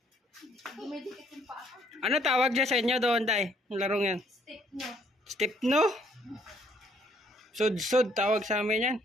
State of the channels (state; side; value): normal; both; correlation 0.66